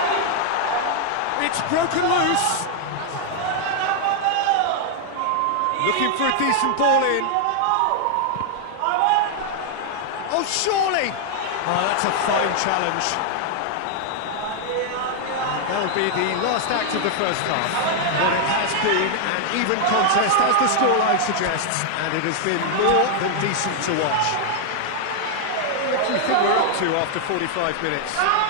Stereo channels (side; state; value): both; different; correlation 0.00